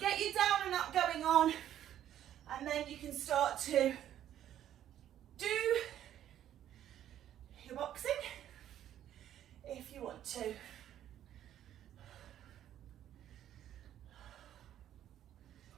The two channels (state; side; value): quieter; left; 11.3 dB